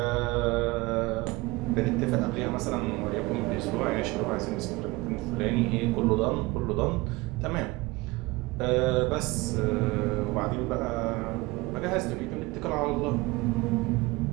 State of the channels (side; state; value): left; quieter; 22.2 dB